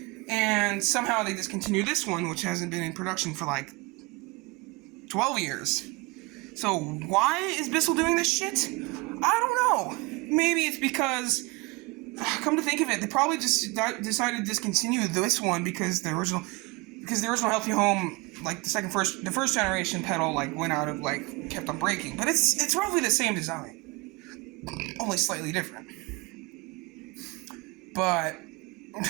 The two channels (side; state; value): left; quieter; 24.8 dB